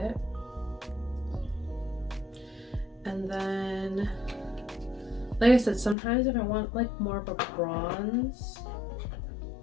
And then, like I said, sometimes if I want like more of a bronze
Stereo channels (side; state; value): right; drops out; at 6.0 s